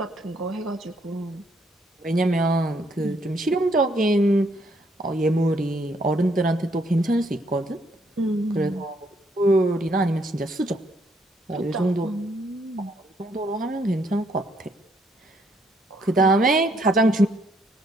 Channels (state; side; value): normal; both; correlation 0.71